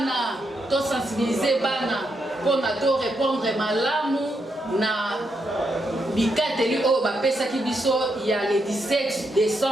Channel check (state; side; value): normal; both; correlation 0.81